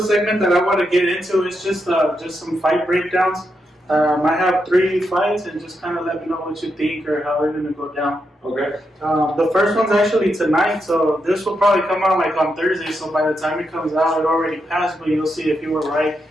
that I want to get into is just some fight breakdowns. I have 3 fights, and just kind of let me know what you think or how they're going to go down. Okay. The first one's actually tonight, so this will probably come out like on Thursday. So by the time it comes out, it already passed, but you'll see if you were right.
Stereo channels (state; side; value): normal; both; correlation 0.83